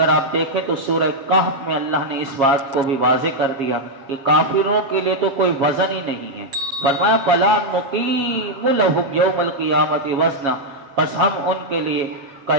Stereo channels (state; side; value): late; left; 7.4 ms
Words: آپ دیکھیں تو سورہ کہف میں اللہ نے اس بات کو بھی واضح کر دیا کہ کافروں کے لیے تو کوئی وزن ہی نہیں ہے۔ فرمایا فَلَا نُقِيمُ لَهُمْ يَوْمَ الْقِيَامَةِ وَزْنًا، بس ہم ان کے لیے